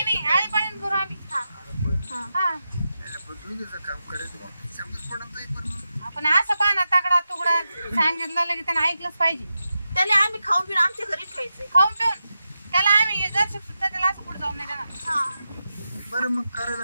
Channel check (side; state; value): both; inverted; correlation -0.89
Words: आळी पाणी करू आम्ही. हा हा हा दोघीचं काम करायचं मग समजत पडत नाही पण मग. आपण असं पाना तगडा तुकडा सांगितलं की त्यानं ऐकलंच पाहिजे. त्याला आम्ही खाऊन पिऊन आमच्या घरी ठेवायचंय. खाऊन पिऊन त्याला आम्ही जर सुद्धा त्याला असं पुढे जाऊन नाही देणार. हा बरं मग